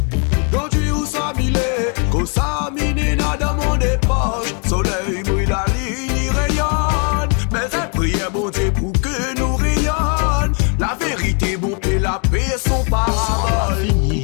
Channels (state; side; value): quieter; right; 38.4 dB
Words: est bon et la paix son parabole.